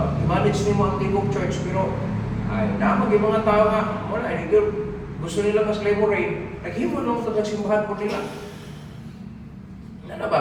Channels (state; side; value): identical; both; correlation 1.00